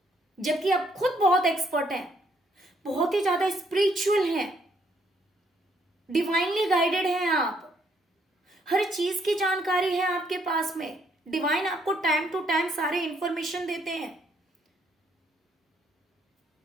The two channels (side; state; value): both; normal; correlation 0.70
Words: जबकि आप खुद बहुत एक्सपर्ट हैं, बहुत ही ज्यादा स्पिरिचुअल हैं, डिवाइनली गाइडेड हैं, आप हर चीज की जानकारी है आपके पास में। डिवाइन आपको टाइम टू टाइम सारे इंफॉर्मेशन देते हैं।